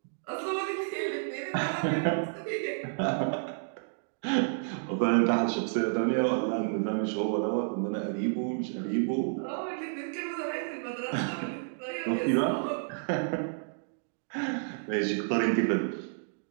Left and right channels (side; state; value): left; silent; digital silence